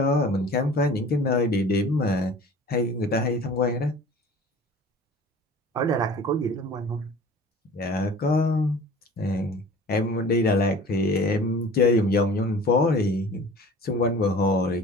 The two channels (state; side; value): normal; both; correlation 0.43